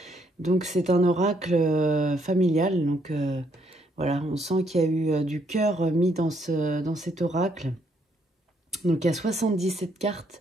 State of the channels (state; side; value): normal; both; correlation 0.72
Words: Donc c'est un oracle familial, donc voilà, on sent qu'il y a eu du cœur mis dans cet oracle. Donc il y a 77